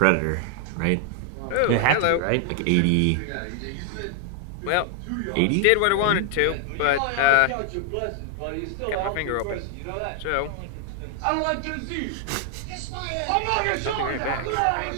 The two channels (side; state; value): both; different; correlation 0.00